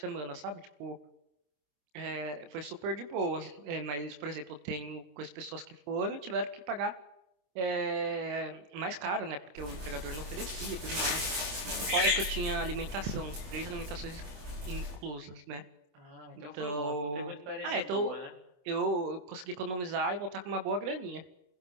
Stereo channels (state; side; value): late; left; 26 ms